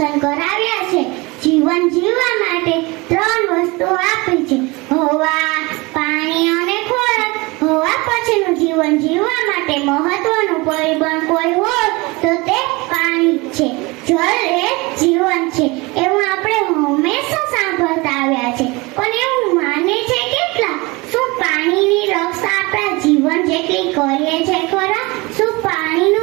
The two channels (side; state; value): left; quieter; 24.7 dB